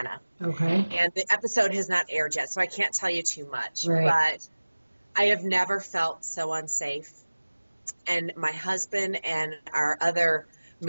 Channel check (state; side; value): inverted; both; correlation -1.00